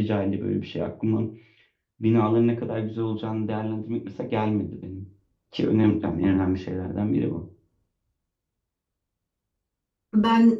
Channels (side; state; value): both; identical; correlation 1.00